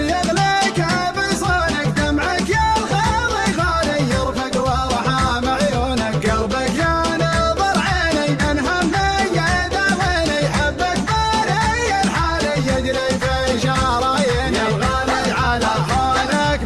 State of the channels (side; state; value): both; identical; correlation 1.00